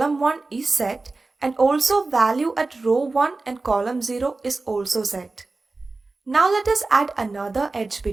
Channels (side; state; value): left; quieter; 3.5 dB